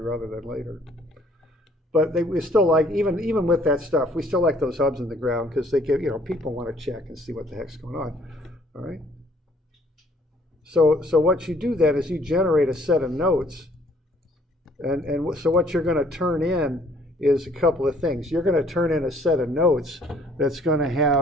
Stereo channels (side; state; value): both; normal; correlation 0.60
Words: rather than later. But we still like, even with that stuff, we still like those hubs in the ground because they give, people want to check and see what the heck's going on. All right. So what you do then is you generate a set of notes, and so what you're going to turn in is a couple of things. You're going to turn in a set of notes that's going to